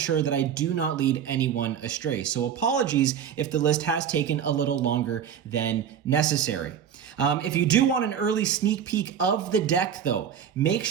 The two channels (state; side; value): quieter; left; 8.4 dB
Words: that I do not lead anyone astray. So apologies if the list has taken a little longer than necessary. If you do want an early sneak peek of the deck, though, make